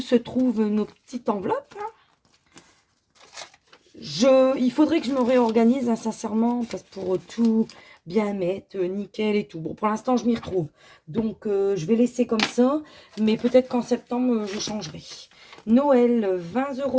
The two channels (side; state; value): both; identical; correlation 1.00